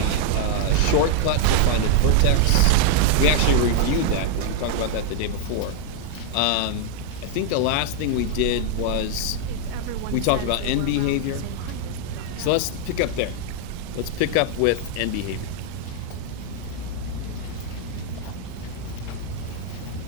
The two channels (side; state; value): both; different; correlation 0.00